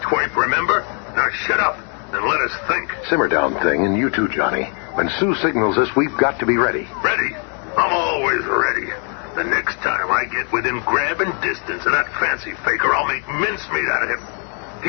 twerp, remember? Now shut up and let us think. Simmer down, Thing, and you too, Johnny. When Sue signals us, we've got to be ready. Ready? I'm always ready. The next time I get within grabbing distance of that fancy faker, I'll make mincemeat out of him.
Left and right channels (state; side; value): quieter; right; 39.1 dB